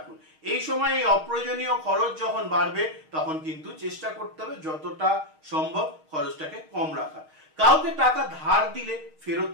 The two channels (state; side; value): late; left; 6.4 ms